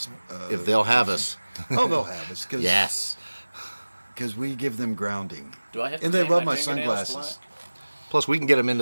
If they'll have us. Oh, they'll have us. Cause, Yes. Because we give them grounding. Do I have to And they paint love my fingernails sunglasses. Plus, we can get them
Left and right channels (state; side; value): inverted; both; correlation -1.00